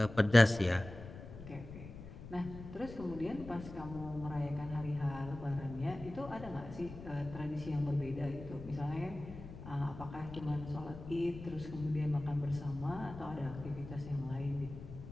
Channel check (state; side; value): noise; left; rumble, 13 dB below the sound